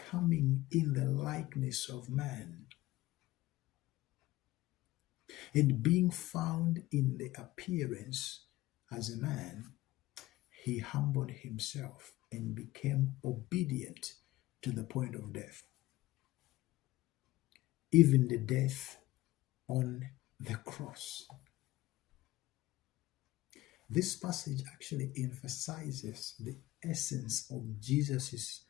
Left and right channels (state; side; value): quieter; right; 17.5 dB